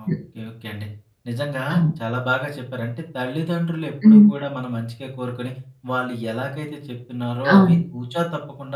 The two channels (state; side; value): identical; both; correlation 1.00